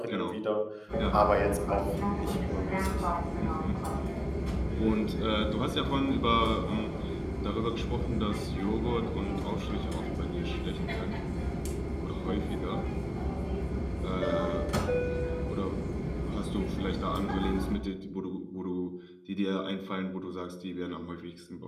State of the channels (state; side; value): identical; both; correlation 1.00